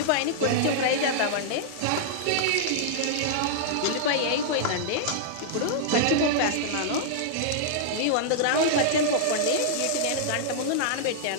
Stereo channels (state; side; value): different; both; correlation -0.01